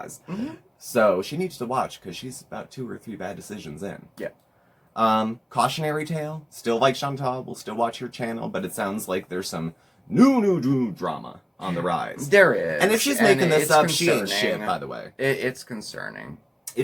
So she needs to watch because she's about 2 or 3 bad decisions in. Yeah. Cautionary tale. Still like Chantal. We'll still watch her channel, but it sounds like there's some new drama on the rise. There is. And if she's making this up, she ain't shit, by the way. It's concerning.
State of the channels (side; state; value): both; identical; correlation 1.00